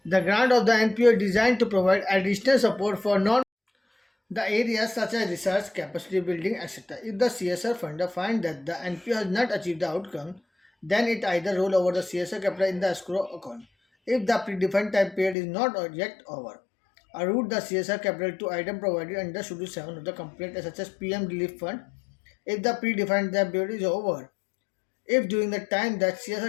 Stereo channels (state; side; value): drops out; right; at 15.4 s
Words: The grant of the NPO is designed to provide additional support for the areas such as research, capacity building, etc. If the CSR funder finds that the NPO has not achieved the outcome, then it either roll over the CSR capital in the escrow account. If the predefined time period is not yet over, route the CSR capital to item provided under Schedule 7 of the complaint, such as PM Relief Fund. If the predefined time period is over, if during the time that